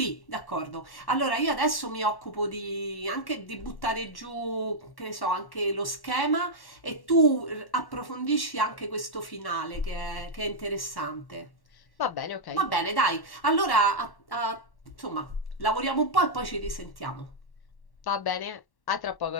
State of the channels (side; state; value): right; late; 1.1 ms